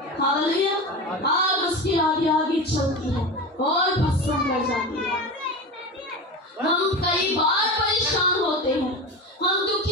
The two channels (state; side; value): normal; both; correlation 0.26